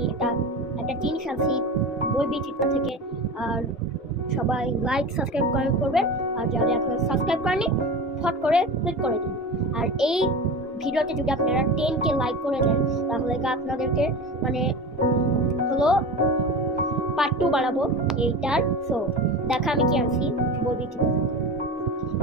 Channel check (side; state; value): both; normal; correlation 0.30